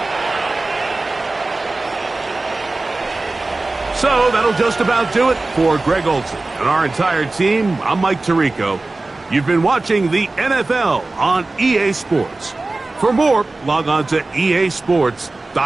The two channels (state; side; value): quieter; left; 3.2 dB